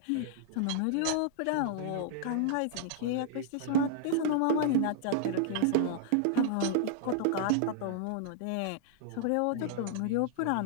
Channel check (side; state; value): both; different; correlation -0.01